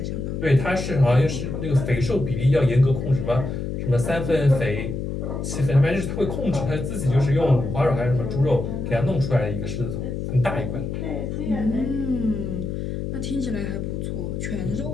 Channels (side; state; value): left; noise; hum, 4 dB below the sound